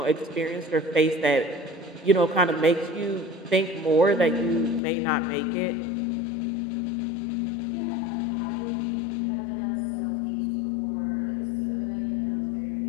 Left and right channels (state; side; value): drops out; right; at 4.8 s